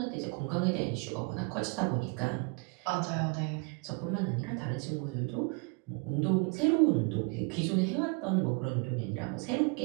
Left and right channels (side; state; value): left; quieter; 32.0 dB